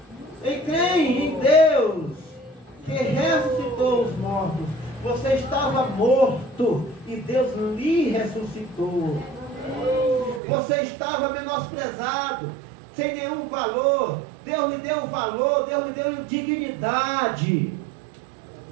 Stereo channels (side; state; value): left; drops out; at 10.4 s